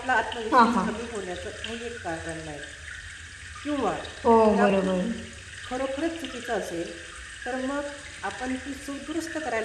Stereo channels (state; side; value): identical; both; correlation 1.00